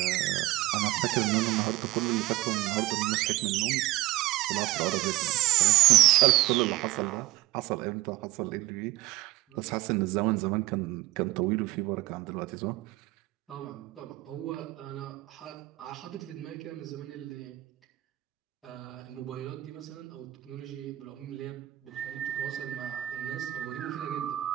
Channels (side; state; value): left; quieter; 17.2 dB